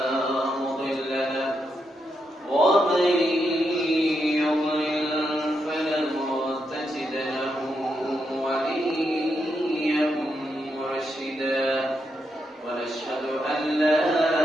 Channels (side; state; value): both; normal; correlation 0.83